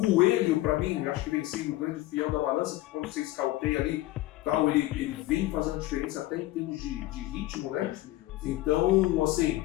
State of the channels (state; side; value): quieter; right; 17.3 dB